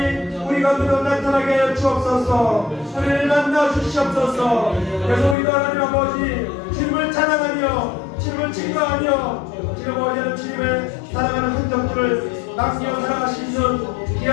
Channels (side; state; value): right; drops out; at 5.4 s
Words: 우리 가운데 나타나게 하여 주옵소서. 우리를 만나 주시옵소서. 그래서 우리도 하나님 아버지 주님을 찬양하며 주님을 증거하며 지금 어제는 주님의 사랑하는 흔적들을 남겨 살아갈 수 있는